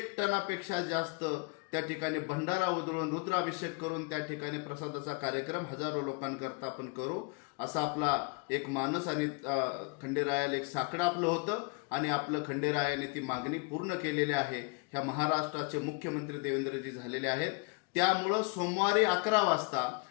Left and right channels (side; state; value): right; quieter; 31.1 dB